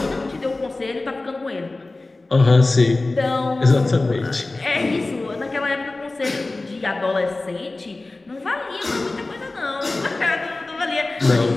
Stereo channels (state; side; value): quieter; right; 3.1 dB